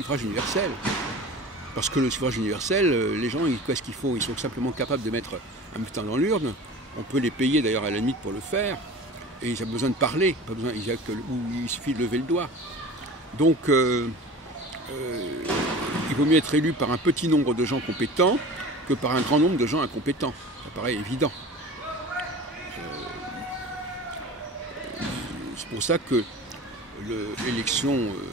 universel. Parce que le suffrage universel, les gens, qu'est-ce qu'ils font? Ils sont simplement capables de mettre un bulletin dans l'urne. On peut les payer d'ailleurs à la limite pour le faire. Et ils n'ont besoin de parler, pas besoin, il suffit de lever le doigt. Donc, il vaut mieux être élu par un petit nombre de gens compétents que par un grand nombre de gens incompétents. Ça paraît évident. C'est pour ça que l'élection...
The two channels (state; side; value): normal; both; correlation 0.38